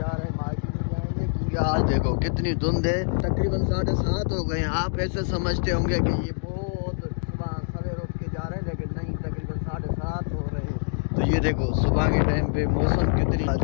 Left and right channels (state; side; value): silent; right; digital silence